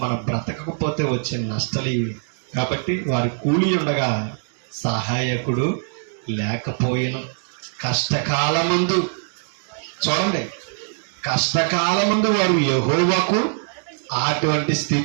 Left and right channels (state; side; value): silent; left; 64 dB below the other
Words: మనం బ్రతకకపోతే వచ్చే నష్టాలు ఇవి. కాబట్టి వారి కూలి ఉండగా సహాయకుడు లేకపోయిన కష్టకాలమందు, చూడండి, కష్టకాలమందు వారు యెహోవాకు, అటువంటి